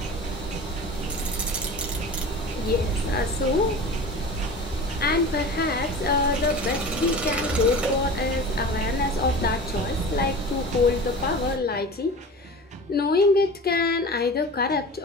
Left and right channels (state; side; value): normal; both; correlation 0.35